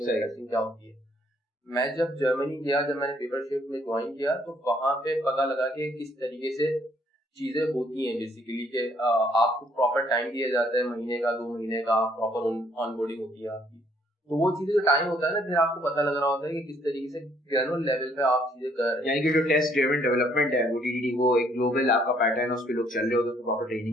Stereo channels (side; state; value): both; normal; correlation 0.66